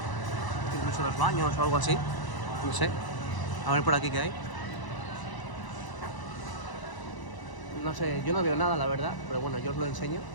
incluso los baños o algo así, no sé. A ver por aquí qué hay. No sé, yo no veo nada, la verdad, pero bueno, yo os lo enseño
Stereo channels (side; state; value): right; late; 1.0 ms